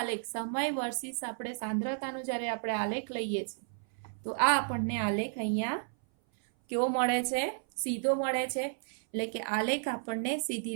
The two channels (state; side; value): silent; left; 56 dB below the other